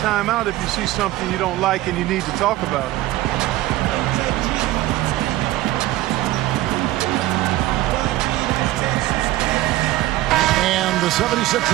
if you see something you don't like and you need to talk about it. And the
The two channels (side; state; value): left; quieter; 16.0 dB